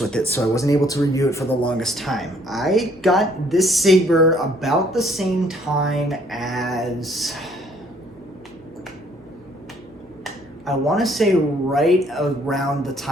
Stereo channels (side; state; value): left; noise; hum, 30 dB below the sound